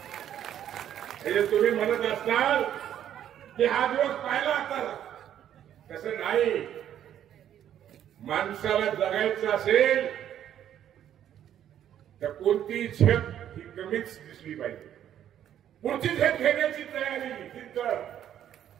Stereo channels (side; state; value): left; quieter; 10.5 dB